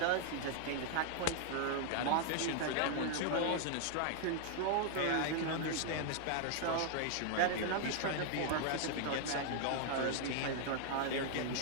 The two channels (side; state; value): both; different; correlation 0.00